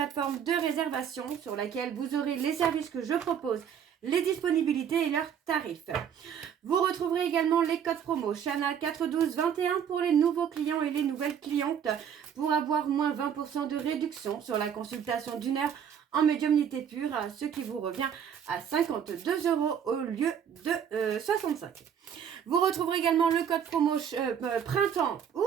de réservation sur laquelle vous aurez les services que je propose, les disponibilités et leurs tarifs. Vous retrouverez également les codes promo Chana 41221 pour les nouveaux clients et les nouvelles clientes pour avoir moins 20% de réduction sur la consultation d'une heure en médiumnité pure, ce qui vous revient à 52 € au lieu de 65. Vous retrouverez également le code promo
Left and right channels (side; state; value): left; quieter; 8.3 dB